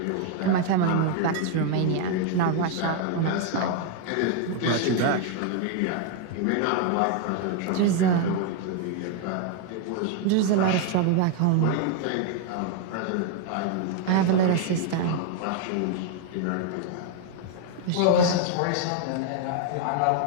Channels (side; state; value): both; different; correlation 0.00